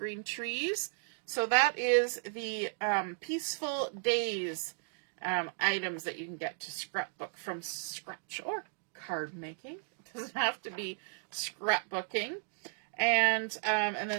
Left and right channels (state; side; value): silent; left; digital silence